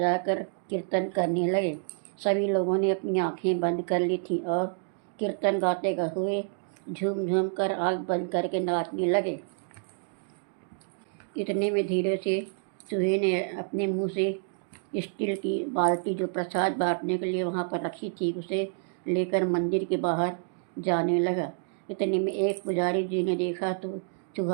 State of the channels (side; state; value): left; silent; digital silence